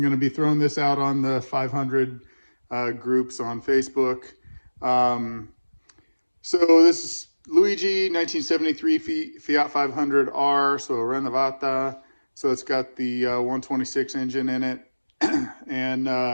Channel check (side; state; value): both; inverted; correlation -1.00